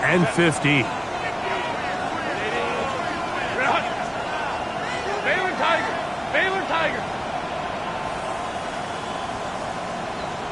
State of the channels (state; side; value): identical; both; correlation 1.00